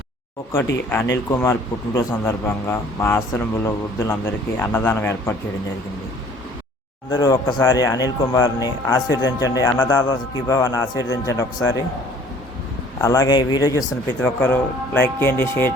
ఒకటి అనిల్ కుమార్ పుట్టినరోజు సందర్భంగా మా ఆశ్రమంలో వృద్ధులందరికీ అన్నదానం ఏర్పాటు చేయడం జరిగింది. అందరూ ఒక్కసారి అనిల్ కుమార్ని ఆశీర్వదించండి. అన్నదాత సుఖీభవ అని ఆశీర్వదించండి ఒకసారి. అలాగే ఈ వీడియో చూస్తున్న ప్రతి ఒక్కరూ లైక్ చేయండి,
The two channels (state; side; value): normal; both; correlation 0.53